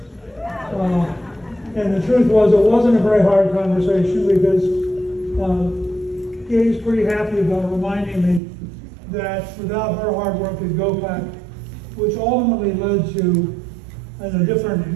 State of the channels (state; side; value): drops out; left; at 8.4 s